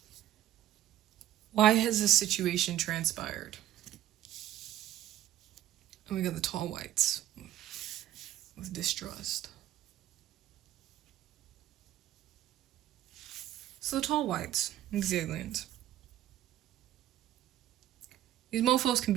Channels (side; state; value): left; quieter; 13.1 dB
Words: Why has this situation transpired? And we got the tall whites with distrust. So the tall whites, these aliens. These mofos can